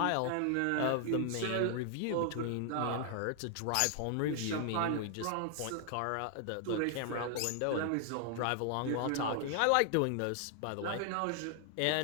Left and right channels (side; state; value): both; different; correlation 0.00